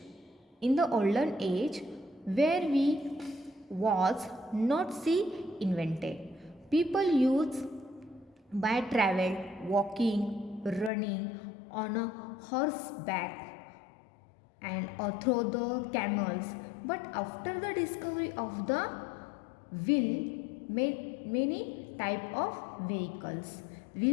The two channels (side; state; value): right; drops out; at 10.9 s